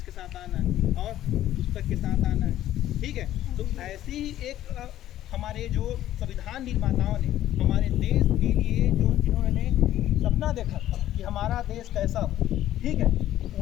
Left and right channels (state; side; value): quieter; right; 13.0 dB